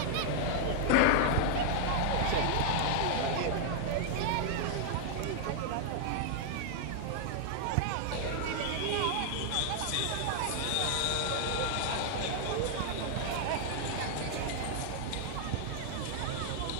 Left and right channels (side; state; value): both; different; correlation 0.00